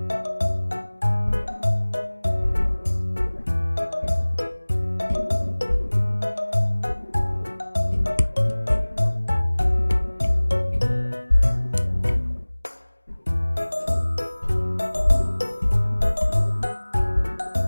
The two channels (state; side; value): inverted; both; correlation -1.00